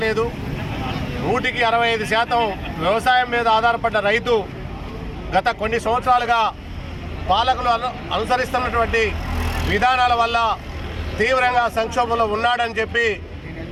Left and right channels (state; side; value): identical; both; correlation 1.00